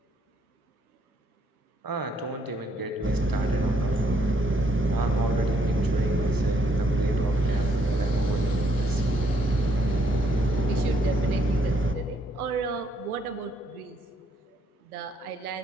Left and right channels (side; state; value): both; normal; correlation 0.71